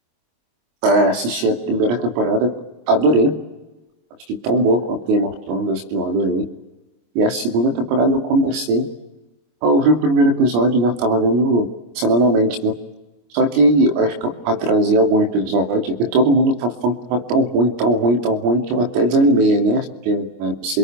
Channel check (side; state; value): left; late; 25 ms